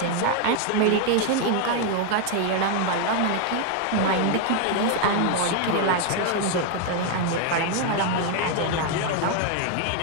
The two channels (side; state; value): both; different; correlation 0.01